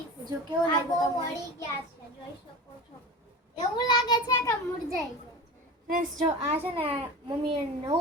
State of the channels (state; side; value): normal; both; correlation 0.30